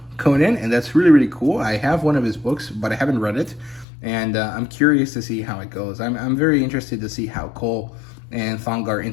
Conan, and that's really, really cool. I have one of his books, but I haven't read it, and I'm curious to see how it goes. I'm very interested to see how Cole and Thongar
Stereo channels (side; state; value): right; drops out; at 3.9 s